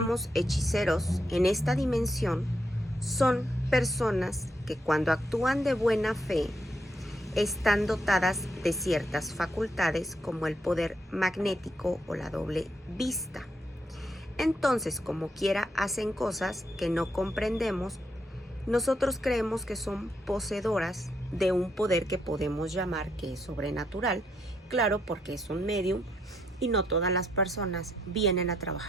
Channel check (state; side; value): normal; both; correlation 0.77